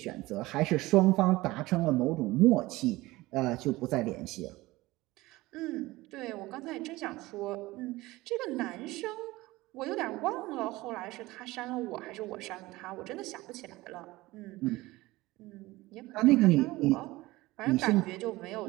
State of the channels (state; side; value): quieter; left; 19.5 dB